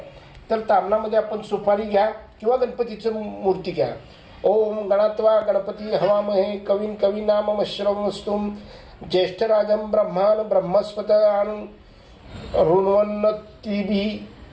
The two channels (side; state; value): both; identical; correlation 1.00